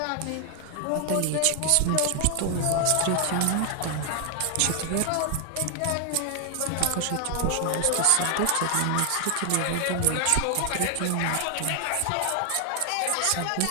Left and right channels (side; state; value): both; different; correlation 0.00